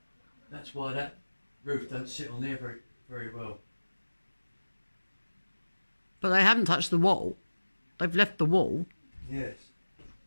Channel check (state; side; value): inverted; both; correlation -1.00